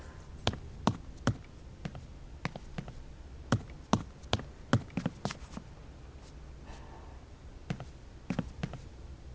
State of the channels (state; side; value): identical; both; correlation 1.00